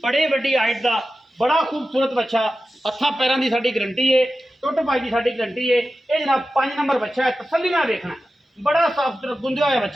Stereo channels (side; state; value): both; normal; correlation 0.93